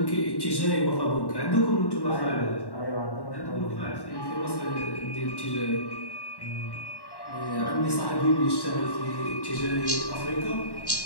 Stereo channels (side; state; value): right; late; 1.1 ms